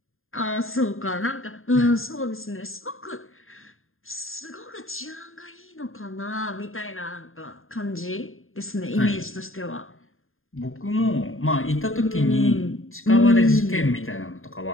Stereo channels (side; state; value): right; late; 0.60 ms